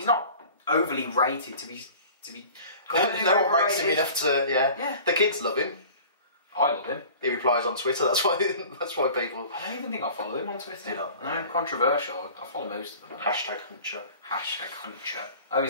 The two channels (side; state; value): both; inverted; correlation -0.43